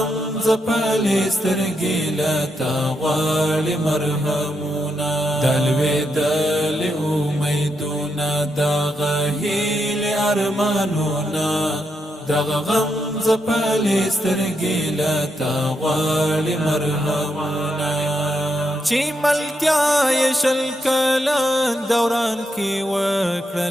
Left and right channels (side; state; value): both; normal; correlation 0.82